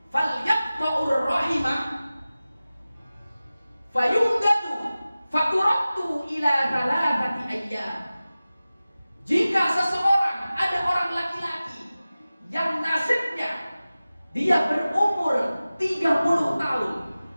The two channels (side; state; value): both; inverted; correlation -0.96